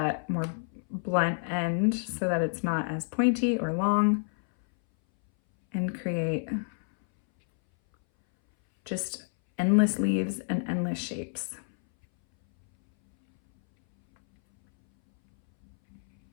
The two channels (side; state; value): right; silent; 59 dB below the other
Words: more blunt end so that it's not as pointy or long, and create just endless leaves and endless shapes.